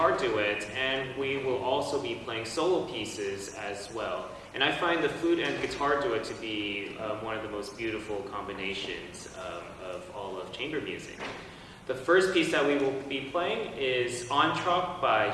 guitar duet, and we will also be playing solo pieces as well. And I find the flute and guitar duet to be one of the most beautiful combinations of all of chamber music. The first piece that we will be playing is Entr'acte by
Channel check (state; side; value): identical; both; correlation 1.00